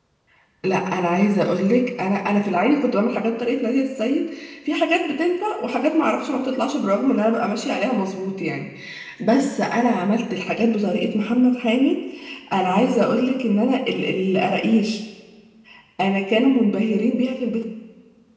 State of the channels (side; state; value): both; identical; correlation 1.00